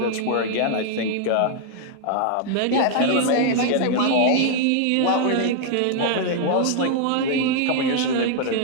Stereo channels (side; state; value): both; different; correlation 0.00